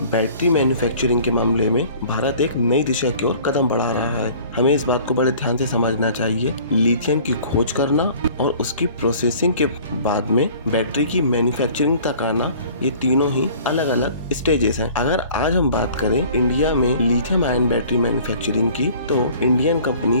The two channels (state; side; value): inverted; both; correlation -0.50